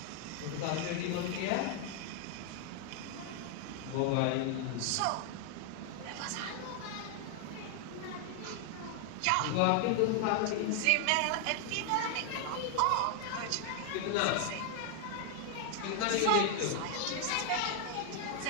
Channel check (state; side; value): different; both; correlation 0.00